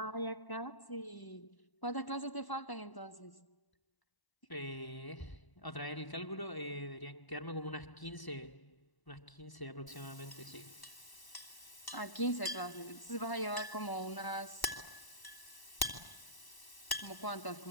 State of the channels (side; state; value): right; late; 1.0 ms